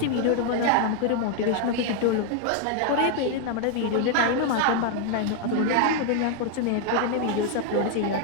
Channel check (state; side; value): different; both; correlation 0.00